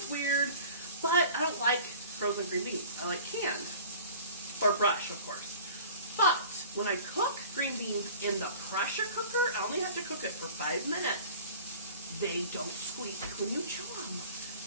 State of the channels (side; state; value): both; inverted; correlation -0.43